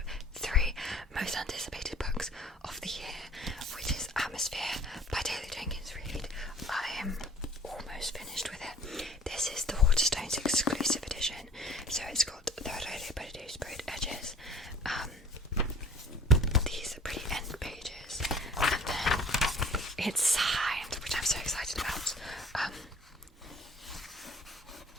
3 most anticipated books of the year, which is Atmosphere by Taylor Jenkins Reid. I am almost finished with it. This is the Waterstones exclusive edition, so it's got the Rodeo Body sprayed edges, these pretty end pages, and then it's signed, which I'm so excited about.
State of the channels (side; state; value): both; normal; correlation 0.49